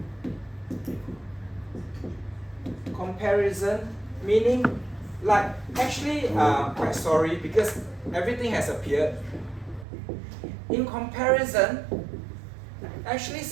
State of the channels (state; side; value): drops out; left; at 9.9 s